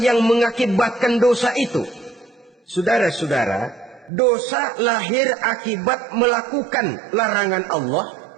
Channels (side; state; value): left; drops out; at 4.1 s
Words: mengakibatkan dosa itu? Saudara-saudara, dosa lahir akibat melakukan larangan Allah